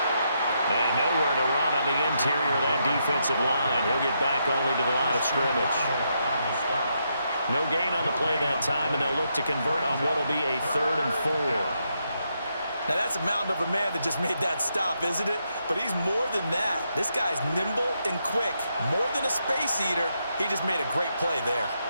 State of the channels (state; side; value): inverted; both; correlation -0.80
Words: And nowhere to run on the interior of that defensive line. He'll get back only to the line of scrimmage. No gain on the play that time, and they'll look to convert on what will be a 3rd and 4. Now, that's a mountain of a man that just made that stop, isn't it? But he's more than that. This guy's nimble and quick. More than a space eater, he just made a great play there.